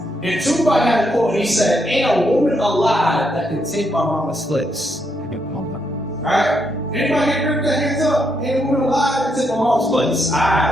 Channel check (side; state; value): both; normal; correlation 0.78